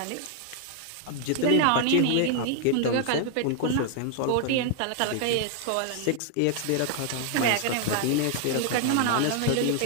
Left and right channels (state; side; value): different; both; correlation 0.00